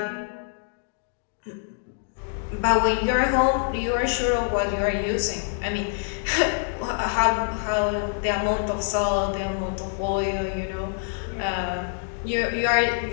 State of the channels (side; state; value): right; silent; digital silence